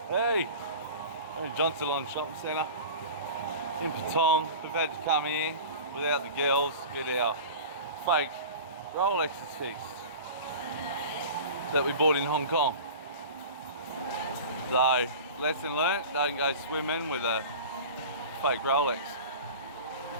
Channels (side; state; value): both; inverted; correlation -0.35